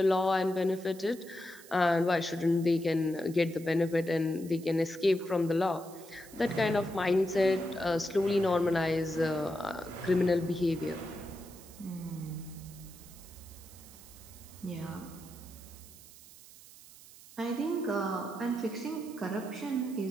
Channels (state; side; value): noise; right; hiss, 20 dB below the sound